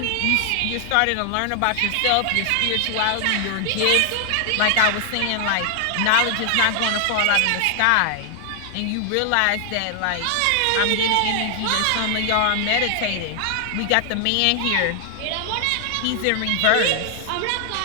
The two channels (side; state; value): both; different; correlation 0.00